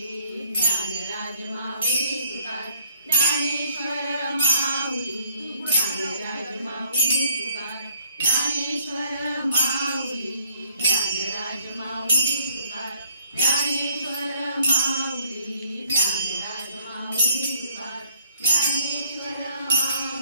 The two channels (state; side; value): inverted; both; correlation -0.64